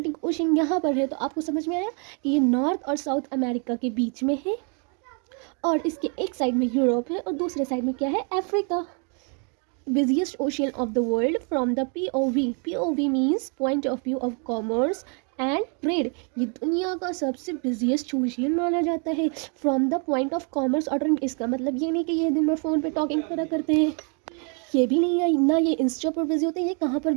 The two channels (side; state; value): left; quieter; 38.7 dB